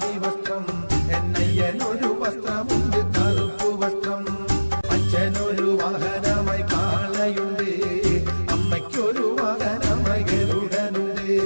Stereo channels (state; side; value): inverted; both; correlation -1.00